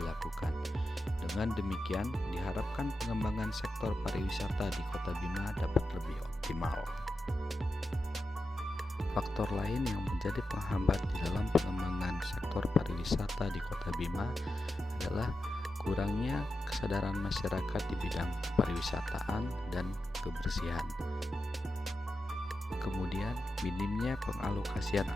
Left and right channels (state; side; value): normal; both; correlation 0.90